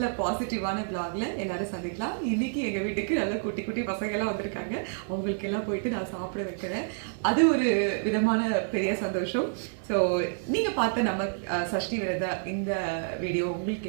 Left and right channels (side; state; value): left; silent; digital silence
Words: பாசிட்டிவான பிளாக்ல எல்லாரும் சந்திக்கலாம். இன்னைக்கு எங்க வீட்டுக்கு நல்ல குட்டி குட்டி பசங்க எல்லாம் வந்திருக்காங்க. அவங்களுக்கு எல்லாம் போயிட்டு நான் சாப்பிட வைக்கிறேன். அது ஒரு விதமான பெரிய சந்தோஷம். ஸோ நீங்க பார்த்த நம்ம சஷ்டி விரத இந்த வீடியோ